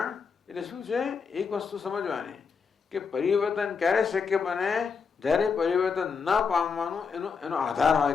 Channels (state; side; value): quieter; right; 5.7 dB